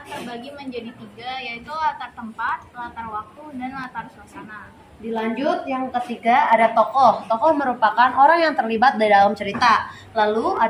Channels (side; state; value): both; identical; correlation 1.00